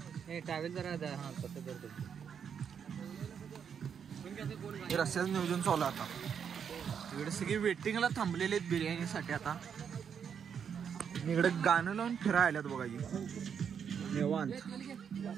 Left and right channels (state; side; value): quieter; left; 7.5 dB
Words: रस्त्याचं नियोजन चालू आता. इकडे सगळी वेटिंगला थांबलेले आहेत बिर्याणीसाठी. आता इकडे गाणं लावून फिरायला बघा निवांत.